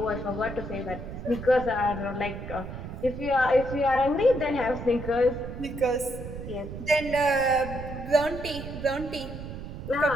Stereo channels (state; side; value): noise; right; rumble, 9 dB below the sound